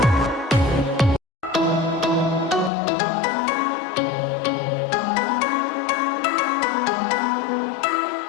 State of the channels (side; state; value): right; drops out; at 2.7 s